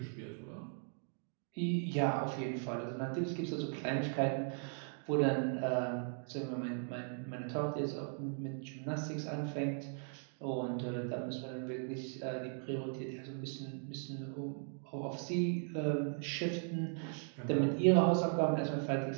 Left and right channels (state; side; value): silent; left; 52 dB below the other